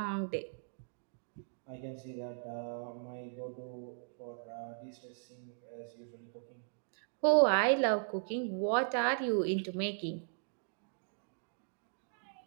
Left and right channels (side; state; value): left; silent; digital silence